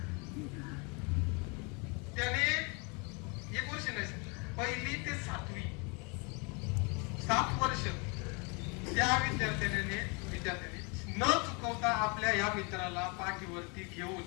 त्याने 1 वर्ष नाही, 1ली ते 7वी 7 वर्ष त्या विद्यार्थ्याने न चुकवता आपल्या या मित्राला पाठीवरती घेऊन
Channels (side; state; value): right; quieter; 32.1 dB